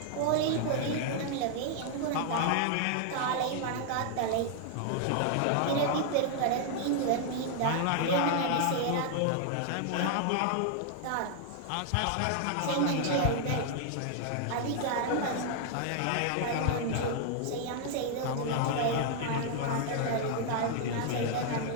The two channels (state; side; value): different; both; correlation 0.00